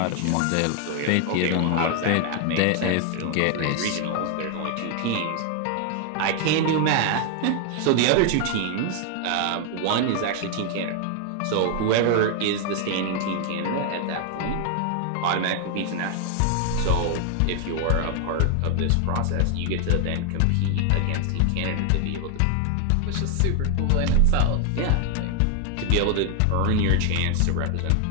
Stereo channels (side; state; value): both; different; correlation 0.00